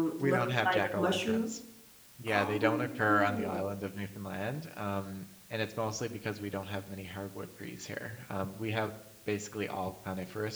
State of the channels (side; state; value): both; identical; correlation 1.00